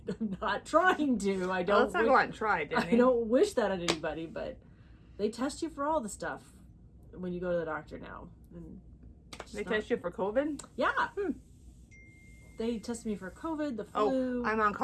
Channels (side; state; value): both; identical; correlation 1.00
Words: I'm not trying to. I don't. Let's not go out and try, Danny. I don't wish that on anybody, but they test you for all the stuff when you go to the doctor now. And They test you for COVID? Yeah. They tested me for COVID, the flu. Oh, I'm on